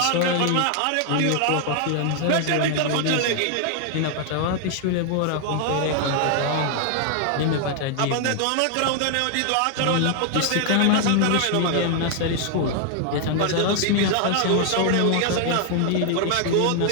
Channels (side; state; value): both; different; correlation 0.00